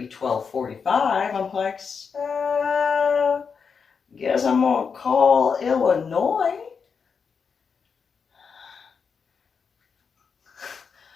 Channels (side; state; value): right; quieter; 5.9 dB